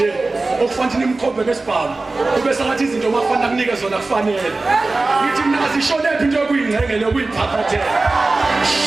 okufanele nimkhombe ngesibhamu. Kube sengathi izinto makufanele kunike zona kufanele. Ngithi mina asisholephi into yokuyingcengela yokuyiphaphathela.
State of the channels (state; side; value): quieter; left; 3.4 dB